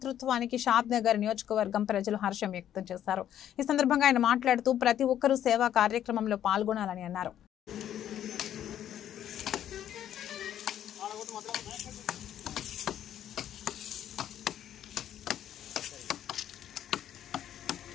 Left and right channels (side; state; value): right; quieter; 10.8 dB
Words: షాద్ నగర్ నియోజకవర్గం ప్రజలు హర్షం వ్యక్తం చేశారు. ఈ సందర్భంగా ఆయన మాట్లాడుతూ ప్రతి ఒక్కరూ సేవా కార్యక్రమంలో పాల్గొనాలని అన్నారు.